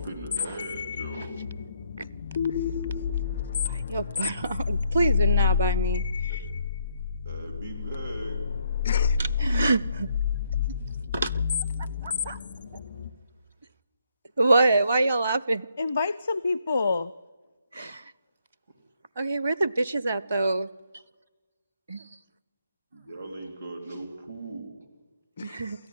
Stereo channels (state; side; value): inverted; both; correlation -0.73